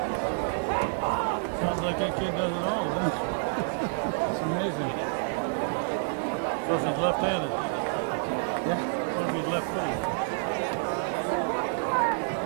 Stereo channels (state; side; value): silent; left; digital silence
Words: sounds like that kid does it all, huh? It's amazing. Of course he's left-handed. Yeah. Of course he's left-handed.